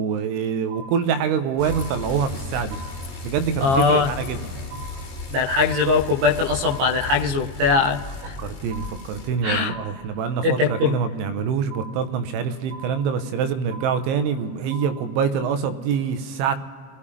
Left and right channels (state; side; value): late; left; 22 ms